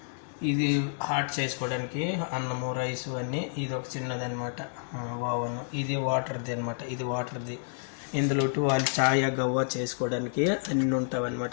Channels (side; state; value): right; silent; digital silence